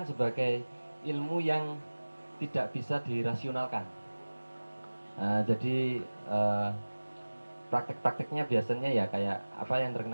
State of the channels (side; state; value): both; inverted; correlation -1.00